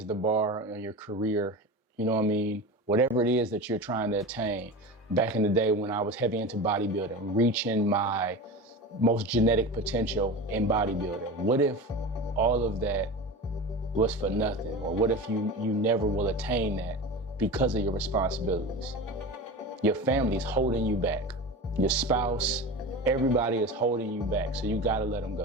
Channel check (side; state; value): both; normal; correlation 0.29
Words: the bar on your career, you know what I mean? Whatever it is that you're trying to attain. Back in the day when I was heavy into bodybuilding, reaching my most genetic potential in bodybuilding. What if all of that was for nothing? Or what if you never will attain that because of your responsibilities? Your family's holding you back. Your spouse, everybody is holding you back. So you gotta let them